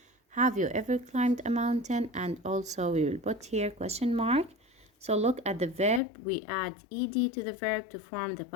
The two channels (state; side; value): drops out; right; at 6.0 s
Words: Have you ever climbed a mountain? And also we will put here question mark. So look at the verb. We add ed to the verb to form the